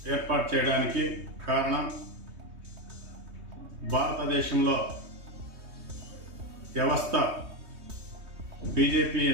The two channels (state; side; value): late; left; 3.2 ms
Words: ఏర్పాటు చేయడానికి కారణం, భారతదేశంలో వ్యవస్థ బీజేపీ